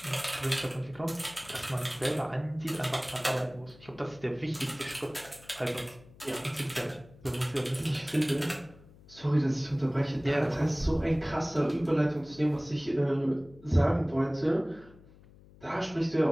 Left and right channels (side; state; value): left; noise; hum, 23 dB below the sound